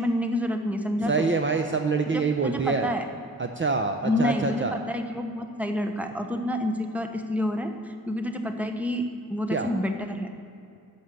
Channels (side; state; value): both; normal; correlation 0.49